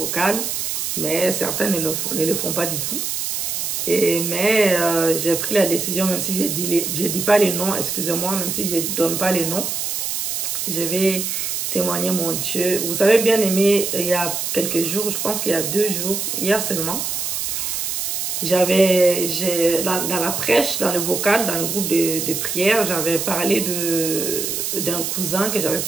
mais certains ne le font pas du tout. Mais j'ai pris la décision, même si je dis pas les noms, excusez-moi, même si je ne donne pas les noms, je vais témoigner mon Dieu. Vous avez bien aimé, il y a quelques jours, je pense qu'il y a 2 jours, hier seulement, dans la prêche, dans le vocal, dans le groupe de prière, j'avais parlé d'un cousin, que j'avais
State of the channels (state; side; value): noise; right; hiss, 2 dB below the sound